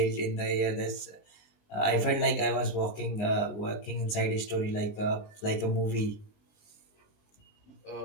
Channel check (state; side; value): late; right; 19 ms